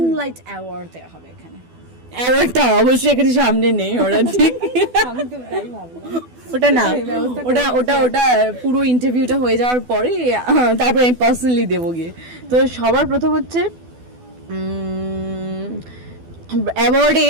অ্যাওয়ার্ড দেওয়া হবে এখানে। অ্যাওয়ার্ডটা অবশ্যই এখানে সামনে নেই, ওরা ঠিক ওটা না, ওটা ওটা ওটা পুরো ইন্টারভিউটা হয়ে যাওয়ার পরে তারপরে আমি পার্সোনালি দেবো গিয়ে। তো সবার প্রথম হচ্ছে অ্যাওয়ার্ডে,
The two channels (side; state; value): left; late; 12 ms